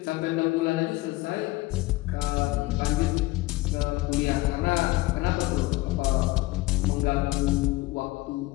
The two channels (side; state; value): right; quieter; 20.0 dB